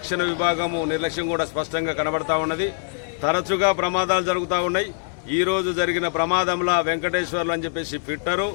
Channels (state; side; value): silent; right; 60 dB below the other